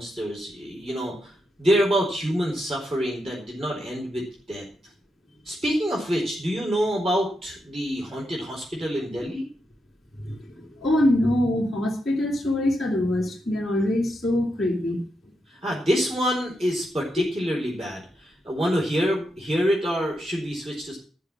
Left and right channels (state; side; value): normal; both; correlation 0.84